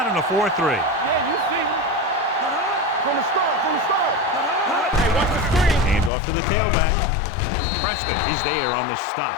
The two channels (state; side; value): drops out; right; at 6.1 s